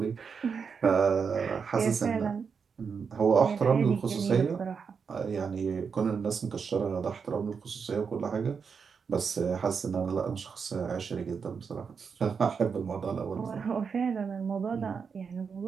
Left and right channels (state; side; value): quieter; left; 6.0 dB